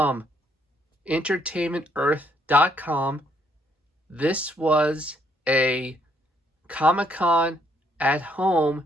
EntertainmentEarth.com. This was a Comic-Con at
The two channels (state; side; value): normal; both; correlation 0.69